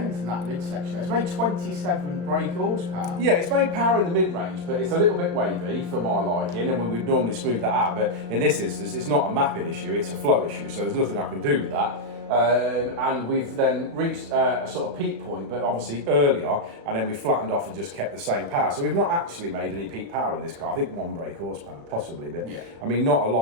in that midsection. It's made 27 brake horsepower. Yeah, it's made power in the mid-range, but it's a little bit wavy for my liking, and we would normally smooth that out. But in this instance, it's not a mapping issue; it's a flow issue. So there's nothing I can do with that. And we've then reached a sort of peak point, but obviously earlier, and then we flattened off and just kept the same power. So we've not actually made any peak power in this car. I think 1 brake horsepower, possibly, but yeah. I mean, not a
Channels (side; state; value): left; late; 35 ms